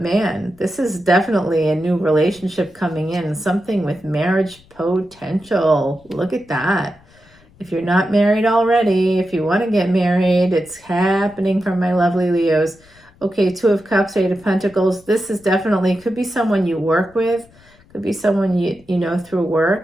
man, this is definitely a new relationship coming in. Something with marriage potential. Look at that. If you're not married already, if you want to get married, it's happening from my lovely Leos. Okay, 2 of Cups, 8 of Pentacles. This is definitely, could be someone you work with. Could be someone you know through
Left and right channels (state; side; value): noise; left; rumble, 28 dB below the sound